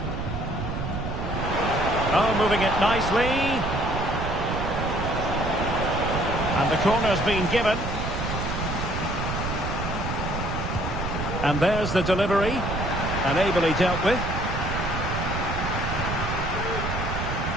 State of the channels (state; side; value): noise; right; rumble, 4 dB below the sound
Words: Oh, moving it nicely. And the corner's been given. And there's the delivery. And ably dealt with.